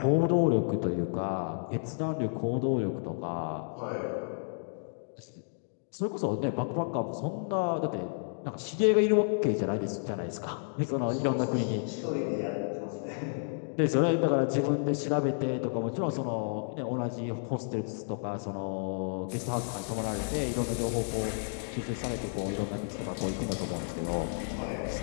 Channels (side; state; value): right; silent; digital silence